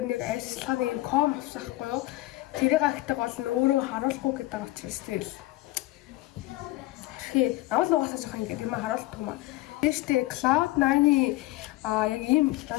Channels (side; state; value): right; quieter; 18.2 dB